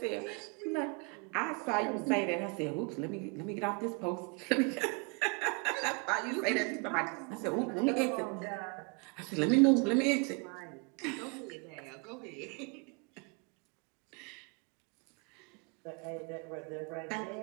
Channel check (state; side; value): quieter; left; 32.0 dB